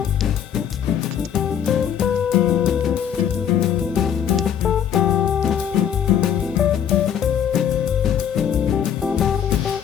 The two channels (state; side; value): quieter; right; 8.8 dB